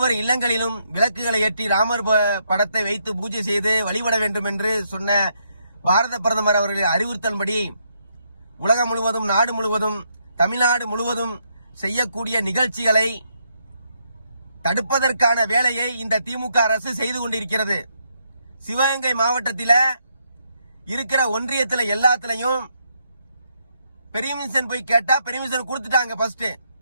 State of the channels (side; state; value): both; inverted; correlation -0.76